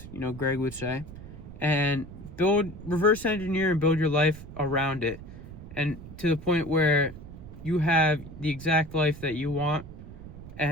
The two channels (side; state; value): right; noise; rumble, 14 dB below the sound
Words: Greg would say, and reverse engineer and build your life around it, and to the point where you have the exact life that you want,